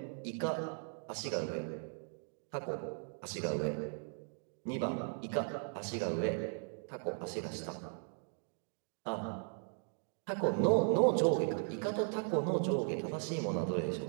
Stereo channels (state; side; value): silent; left; 53 dB below the other